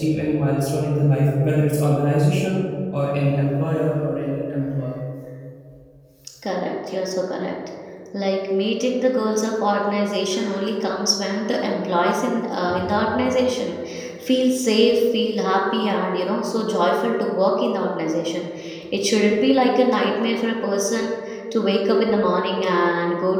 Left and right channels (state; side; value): identical; both; correlation 1.00